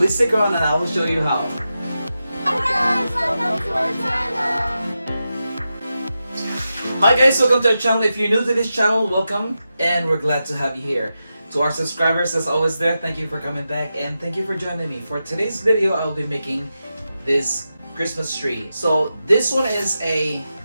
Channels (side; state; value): both; inverted; correlation -0.90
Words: stick around and I will show you how. Hi guys, welcome to our channel. Hi guys, welcome to our channel. If you're new to this channel, welcome and we're glad to have you here. To our subscribers that's always there, thank you for coming back and thank you for joining me. For today's video, I will be making this Christmas tree. So this one is a